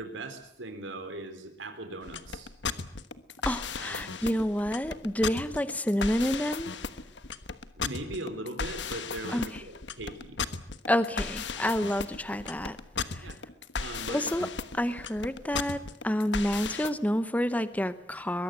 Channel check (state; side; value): normal; both; correlation 0.75